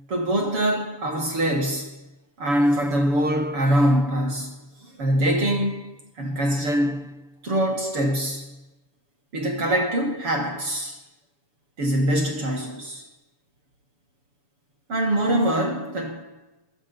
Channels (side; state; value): left; late; 7.0 ms